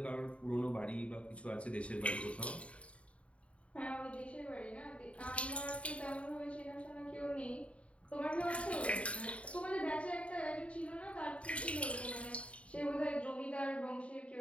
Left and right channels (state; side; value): late; right; 0.063 ms